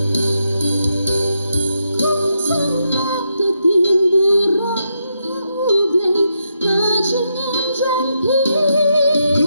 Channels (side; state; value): both; inverted; correlation -0.82